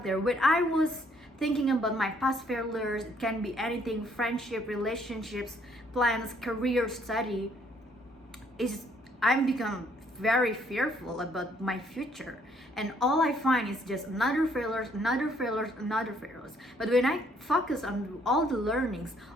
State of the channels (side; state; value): both; normal; correlation 0.66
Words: there. When I was thinking about my past failures, it can be anything: friendship, relationships, plans, career, study, I'm become very fearful about my future, and all I find is just another failures. But when I focus on all the learnings,